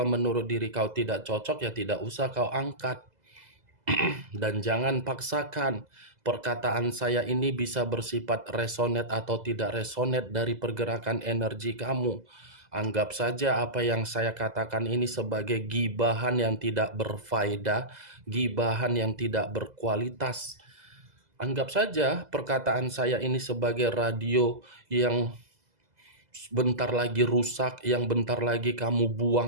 menurut diri kau tidak cocok ya tidak usah kau angkat. Dan jangan paksakan. Perkataan saya ini bisa bersifat resonate atau tidak resonate dari pergerakan energi kamu. Anggap saja apa yang saya katakan ini sebagai gibahan yang tidak berfaedah, gibahan yang tidak berkualitas. Anggap saja perkataan saya ini sebagai radio yang bentar lagi rusak, yang bentar lagi kamu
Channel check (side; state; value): left; late; 2.0 ms